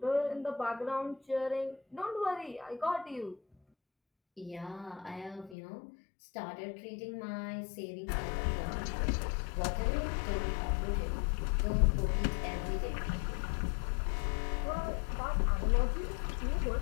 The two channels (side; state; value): right; drops out; at 5.6 s